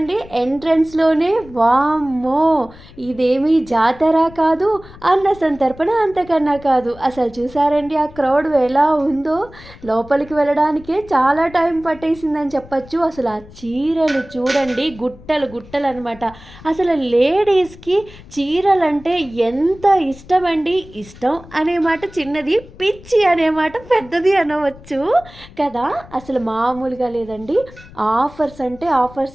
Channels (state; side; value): noise; left; rumble, 20 dB below the sound